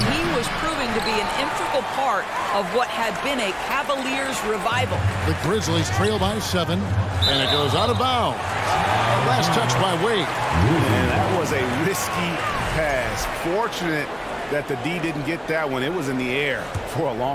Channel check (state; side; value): identical; both; correlation 1.00